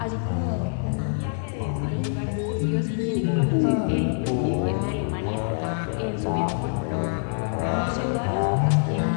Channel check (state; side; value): silent; right; digital silence